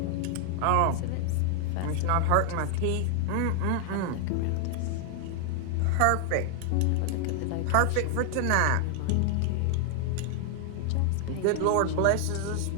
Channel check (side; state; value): both; different; correlation 0.00